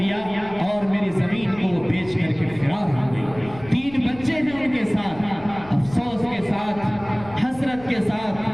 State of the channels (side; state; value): left; noise; rumble, 19 dB below the sound